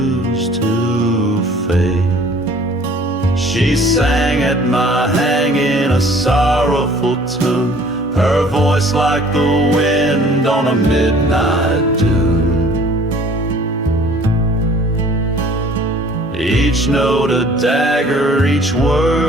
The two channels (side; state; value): both; normal; correlation 0.53